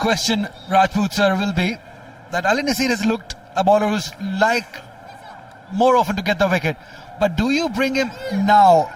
Rajput sir, will be that Ali Nasir has looked a bowler who's like more often to get the wicket. But do you bring him now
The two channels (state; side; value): identical; both; correlation 1.00